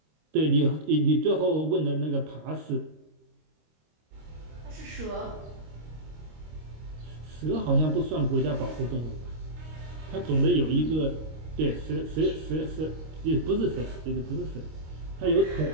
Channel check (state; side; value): late; left; 26 ms